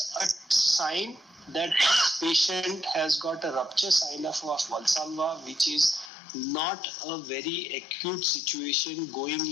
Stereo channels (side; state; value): right; drops out; at 6.1 s